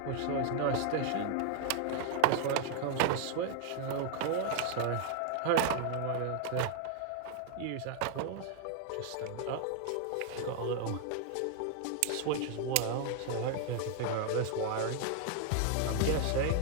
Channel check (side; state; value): both; different; correlation 0.00